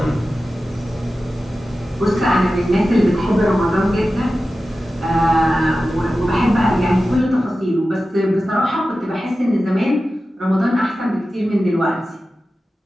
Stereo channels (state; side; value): normal; both; correlation 0.94